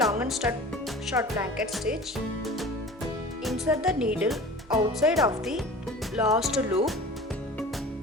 and short blanket stitch, insert the needle outside of the last loop.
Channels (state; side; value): normal; both; correlation 0.40